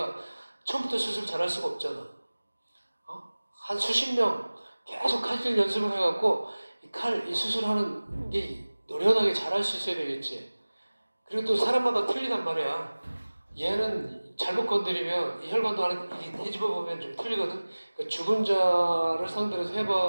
처음부터 수술 잘할 수가 없잖아. 한 수십 명 계속 칼질 연습을 해갖고 이 수술하는 게 노련하게 잘할 수 있어야 되겠지. 그리고 또 사람마다 틀리단 말이야. 얘는 잘못 건드리면 혈관도 안에 헤집어 보면 좀 틀리거든. 그러니까 죽은 자를 상대로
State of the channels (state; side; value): inverted; both; correlation -1.00